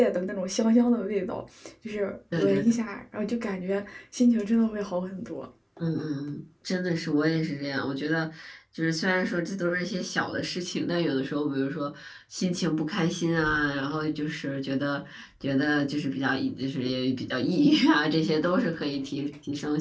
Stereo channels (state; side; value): identical; both; correlation 1.00